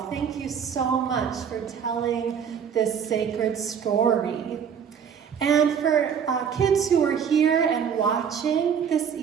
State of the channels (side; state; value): left; quieter; 7.6 dB